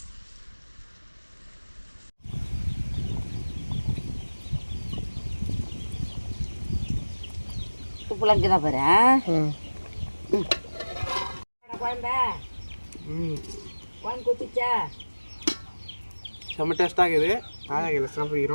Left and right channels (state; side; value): inverted; both; correlation -1.00